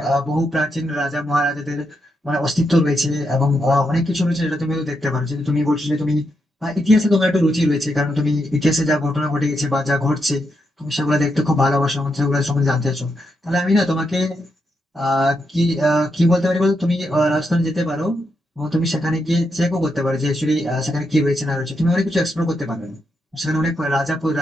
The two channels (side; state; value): both; normal; correlation 0.82